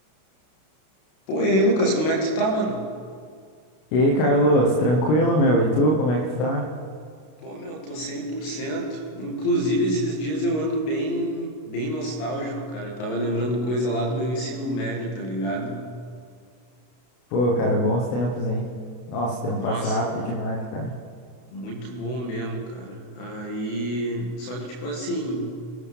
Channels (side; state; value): right; late; 32 ms